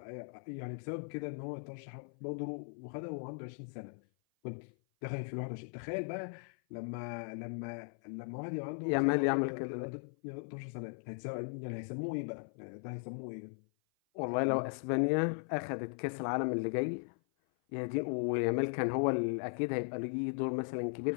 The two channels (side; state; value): right; silent; 53 dB below the other